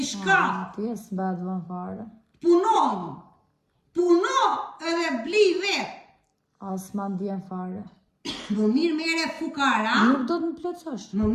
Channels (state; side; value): identical; both; correlation 1.00